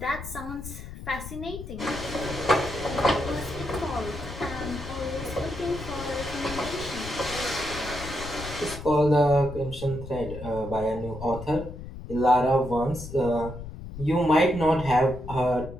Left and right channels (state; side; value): noise; left; rumble, 11 dB below the sound